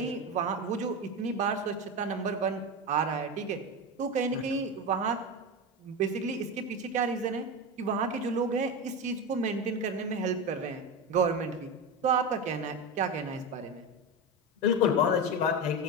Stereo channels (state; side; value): normal; both; correlation 0.19